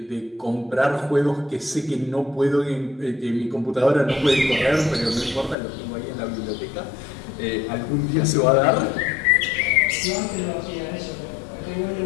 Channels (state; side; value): drops out; right; at 5.6 s